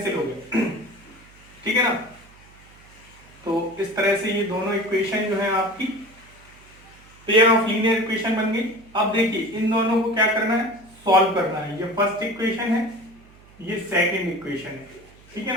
हो गए। ठीक है ना, तो इस तरह से ये दोनों इक्वेशन जो है आपकी पेयर ऑफ लीनियर इक्वेशन बन गई। अब देखिए, इन दोनों को क्या करना है, सॉल्व करना है। ये फर्स्ट इक्वेशन है, ये सेकंड इक्वेशन है। ठीक है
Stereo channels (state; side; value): noise; right; hum, 25 dB below the sound